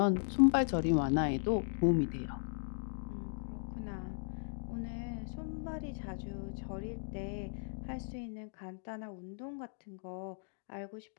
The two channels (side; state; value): right; silent; digital silence